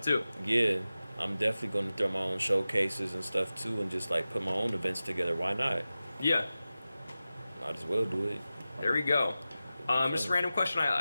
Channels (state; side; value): inverted; both; correlation -0.95